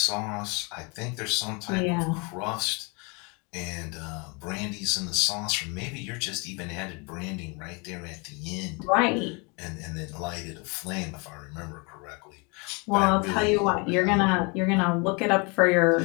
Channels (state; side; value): quieter; right; 31.1 dB